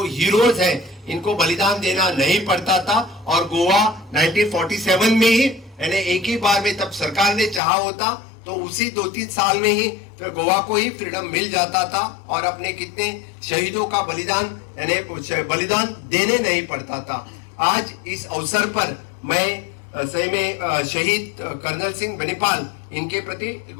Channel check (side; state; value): right; drops out; at 7.6 s